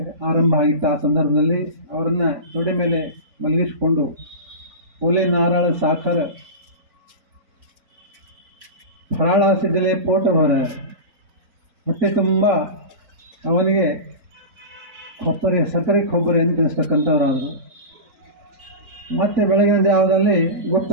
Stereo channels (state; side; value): late; left; 3.7 ms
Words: ಆರಂಭ ಆಗಿತ್ತು. ಆ ಸಂದರ್ಭದಲ್ಲಿ ಅವರನ್ನು ತೊಡೆ ಮೇಲೆ ಮಲಗಿಸಿಕೊಂಡು ಒಲೆ, ನಾರಾಳ, ಸಾಖರ, ಫರಾಳಾಸಿದ್ದಲೇ ಪೋಟ ಹೊರ ಹೊಟ್ಟೆ ತುಂಬ ಅವನಿಗೆ ಸಕ್ಕರೆ ಕೊಬ್ಬರಿ ಅಂತ ತಿನ್ನಿಸ್ತಕ್ಕಂಥವರಾದರು. ಮತ್ತೆ ಬೆಳಗಿನ ಜಾವದಲ್ಲಿ